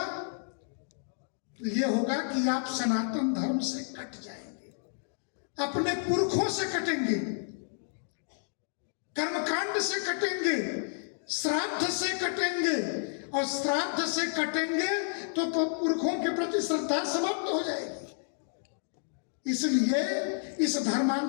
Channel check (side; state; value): right; silent; digital silence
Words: ये होगा कि आप सनातन धर्म से कट जाएंगे, अपने पुरखों से कटेंगे, कर्मकांड से कटेंगे, श्राद्ध से कटेंगे, और श्राद्ध से कटेंगे तो पुरखों के प्रति श्रद्धा समाप्त हो जाएगी। इसलिए इस